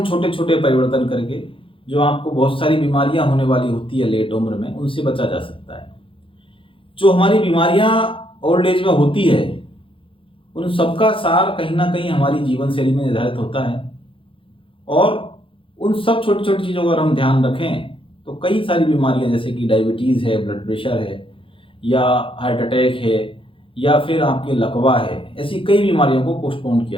छोटे छोटे परिवर्तन करके जो आपको बहुत सारी बीमारियां होने वाली होती है लेट उम्र में, उनसे बचा जा सकता है। जो हमारी बीमारियां ओल्ड एज में होती है उन सबका सार कहीं ना कहीं हमारी जीवन शैली में निर्धारित होता है, और उन सब छोटी छोटी चीज़ों का अगर हम ध्यान रखें तो कई सारी बीमारियां जैसे कि डायबिटीज़ है, ब्लड प्रेशर है, या हार्ट अटैक है, या फिर आपके लकवा है, ऐसी कई बीमारियों को पोस्टपोन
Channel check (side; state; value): right; late; 0.25 ms